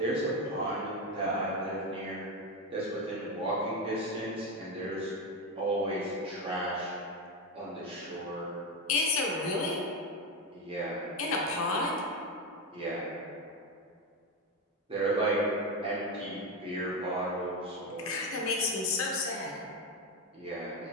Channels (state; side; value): normal; both; correlation 0.12